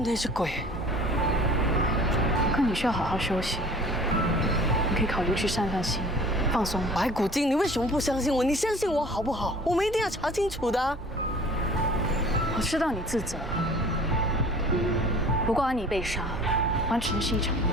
只鬼？可你需要好好休息，你可以考虑去散散心，放松。白骨精，你为什么不相信我？你相信我好不好？我们一定要查清楚的。我知道你自责，不过安妮被杀，完全是一场意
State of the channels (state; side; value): normal; both; correlation 0.47